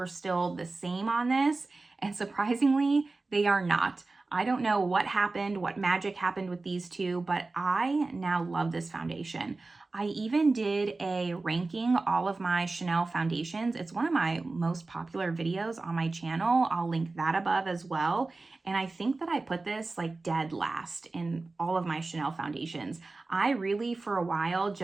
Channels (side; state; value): left; quieter; 3.5 dB